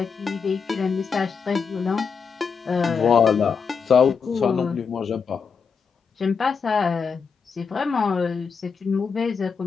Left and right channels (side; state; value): right; quieter; 5.8 dB